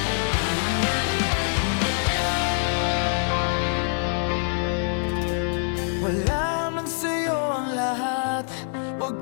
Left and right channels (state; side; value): silent; right; 62 dB below the other